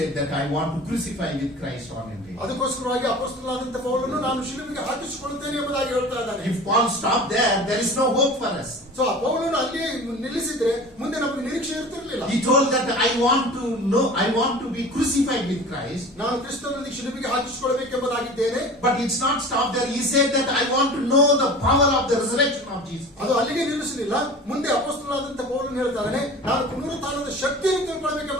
that I want to crucify with Christ on a day. ಅದಕ್ಕೋಸ್ಕರವಾಗಿ ಅಪೊಸ್ತಲನಾದಂತ ಪೌಲನು ನಾನು ಶಿಲುಬೆಗೆ ಹಾಕಿಸಿಕೊಳ್ಳುತ್ತೇನೆ ಎಂಬುದಾಗಿ ಹೇಳ್ತಾ ಇದ್ದಾನೆ. If Paul stopped there is no hope for us. So ಆ ಪೌಲನು ಅಲ್ಲಿಯೇ ನಿಲ್ಲಿಸಿದ್ರೆ ಮುಂದೆ ನಮಗೆ ನಿರೀಕ್ಷೆ ಇರ್ತಿರ್ಲಿಲ್ಲ. He told that I want to be crucified with Christ. ನಾನು ಕ್ರಿಸ್ತನಲ್ಲಿ ಶಿಲುಬೆಗೆ ಹಾಕಿಸಿಕೊಳ್ಳಬೇಕೆಂಬುದಾಗಿದ್ದೇನೆ. But it's not stopped there. He said that I want to know the power of the resurrection of Jesus. ಅದು ಅಲ್ಲಿಗೆ ನಿಲ್ಲಿಸಲಿಲ್ಲ. ಮುಂದೆ ಅಪೊಸ್ತಲನಾದಂತ ಪೌಲನು ಹೇಳ್ತಾನೆ ನಾನು ಪುನರುತ್ಥಾನದ ಶಕ್ತಿಯನ್ನು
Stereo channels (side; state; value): both; normal; correlation 0.38